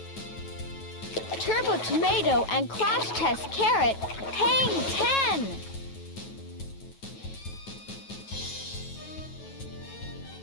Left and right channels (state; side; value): late; right; 9.2 ms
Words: Turbo Tomato and Crash Test Carrot hang